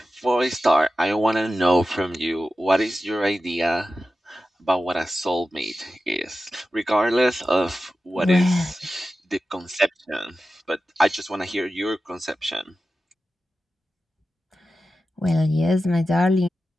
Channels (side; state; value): both; normal; correlation 0.93